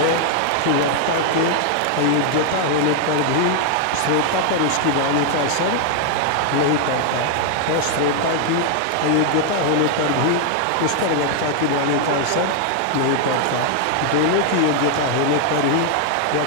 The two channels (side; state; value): both; different; correlation 0.00